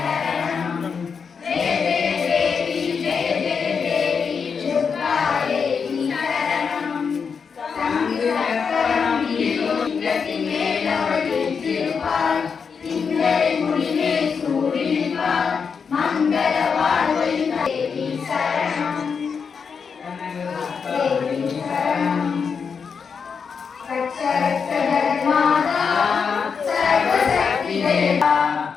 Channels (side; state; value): right; quieter; 6.0 dB